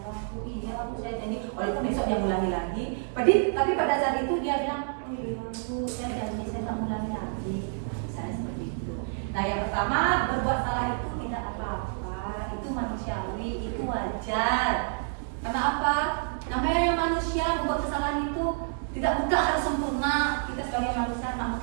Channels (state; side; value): silent; left; digital silence